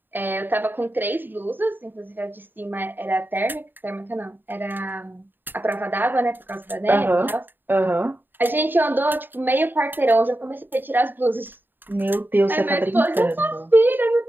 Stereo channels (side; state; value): left; late; 0.094 ms